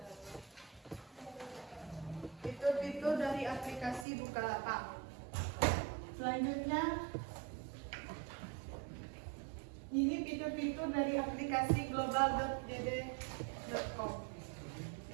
Selanjutnya, ini fitur-fitur dari aplikasi global.jd.com.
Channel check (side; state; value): left; drops out; at 4.0 s